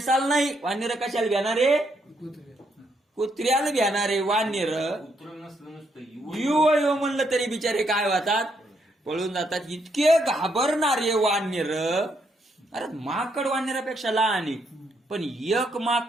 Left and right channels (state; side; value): normal; both; correlation 0.75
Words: नाही वानर कशाला घेणारे? कुत्र्याला घेणारे वानर. युव म्हणलं तरी बिचारे काय होतात? पळून जातात. इतके घाबरणारे वानर अरे माकड वानरापेक्षा लहान आहे, पण एक